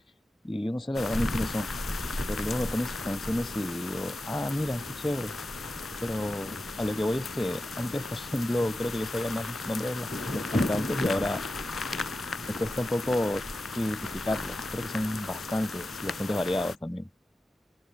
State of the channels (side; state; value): both; normal; correlation 0.92